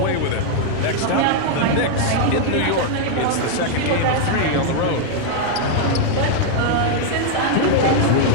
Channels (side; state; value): both; different; correlation 0.00